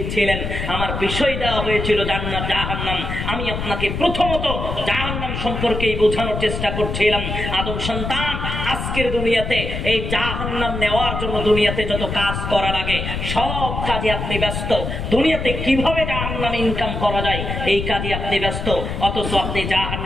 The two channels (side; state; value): left; noise; rumble, 4 dB below the sound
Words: আমার বিষয় দেওয়া হয়েছিল জান্নাত জাহান্নাম। আমি আপনাকে প্রথমত জাহান্নাম সম্পর্কেই বোঝানোর চেষ্টা করছিলাম। আদম সন্তান, আজকের দুনিয়াতে এই জাহান্নাম নেওয়ার জন্য দুনিয়াতে যত কাজ করা লাগে সব কাজে আপনি ব্যস্ত। দুনিয়াতে কিভাবে জাহান্নাম ইনকাম করা যায় এই কাজে আপনি ব্যস্ত, অথচ আপনি